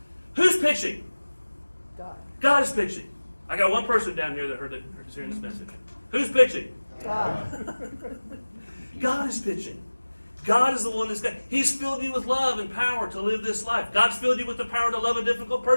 Who's pitching? God. God is pitching. I got one person down here that heard hearing this message. Who's pitching? God. God is pitching. God is the one that's got. He's filled you with love and power to live this life. God's filled you with the power to love a difficult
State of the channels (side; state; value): both; inverted; correlation -1.00